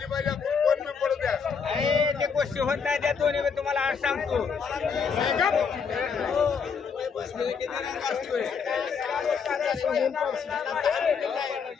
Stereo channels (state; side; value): quieter; right; 6.0 dB